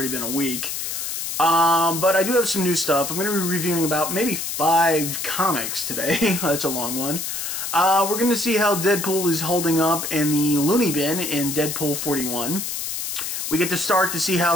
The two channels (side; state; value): left; noise; hiss, 4 dB below the sound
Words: been a week. But I do have some new stuff. I'm going to be reviewing about maybe 5 comics today. That's a long one. We're going to see how Deadpool is holding up in the looney bin in Deadpool 41. We get to start to see